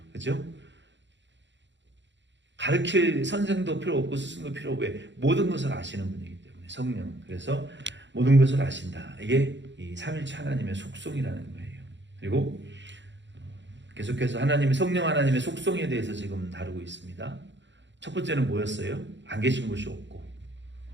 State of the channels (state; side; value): late; left; 0.53 ms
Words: 그죠? 가르칠 선생도 필요 없고 스승도 필요 없고 왜? 모든 것을 아시는 분이기 때문에 성령. 그래서 모든 것을 아신다. 이게 이 삼일체 하나님의 속성이라는 거예요. 그리고 계속해서 성령 하나님의 속성에 대해서 지금 다루고 있습니다. 첫 번째는 뭐였어요? 안 계신 것이 없고